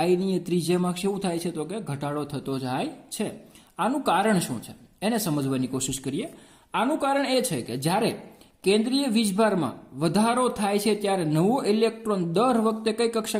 ત્રિજ્યામાં શું થાય છે તો કે ઘટાડો થતો જાય છે. આનું કારણ શું છે એને સમજવાની કોશિશ કરીએ. આનું કારણ એ છે કે જ્યારે કેન્દ્રીય વીજભારમાં વધારો થાય છે ત્યારે નવો ઇલેક્ટ્રોન દર વખતે કઈ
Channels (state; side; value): identical; both; correlation 1.00